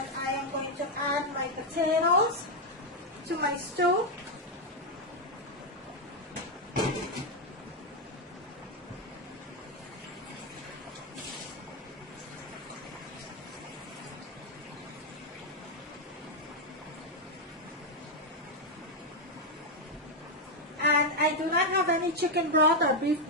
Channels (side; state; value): both; normal; correlation 0.02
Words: I am going to add my potatoes to my stew. And I do not have any chicken broth or beef